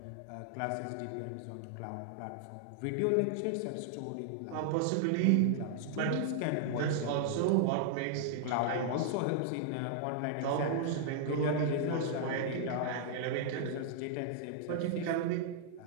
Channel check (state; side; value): different; both; correlation -0.01